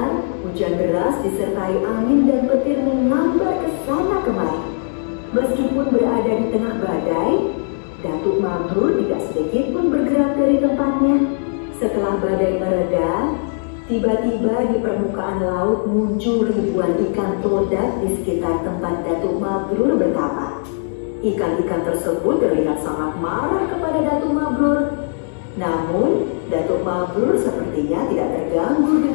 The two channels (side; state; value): right; silent; digital silence